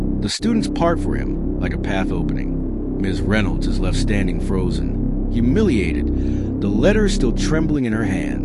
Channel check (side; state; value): both; identical; correlation 1.00